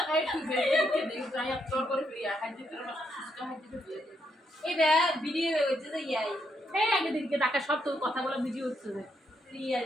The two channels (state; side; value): normal; both; correlation 0.78